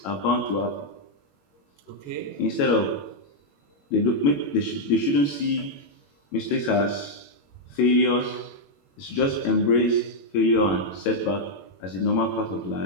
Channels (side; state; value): right; late; 21 ms